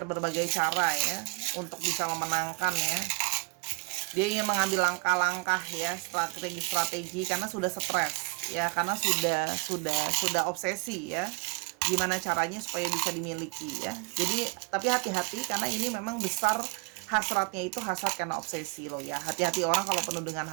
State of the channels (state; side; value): quieter; left; 30.4 dB